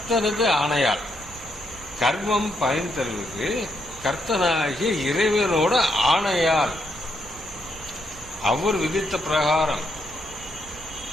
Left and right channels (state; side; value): normal; both; correlation 0.77